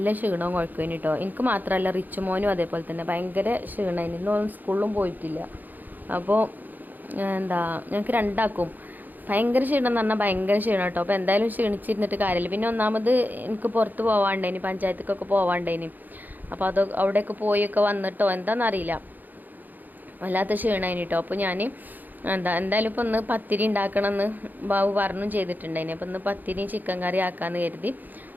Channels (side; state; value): left; late; 0.085 ms